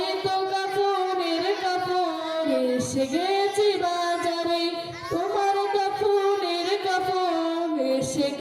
কাফনের কাপড় এসে গেছে বাজারে, তোমার কাফনের কাপড় এসে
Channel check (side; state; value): both; identical; correlation 1.00